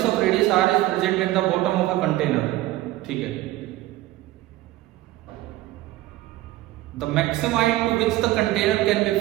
of radius r is present at the bottom of a container। ठीक है, the maximum height to which the container can be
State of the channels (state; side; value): quieter; left; 16.2 dB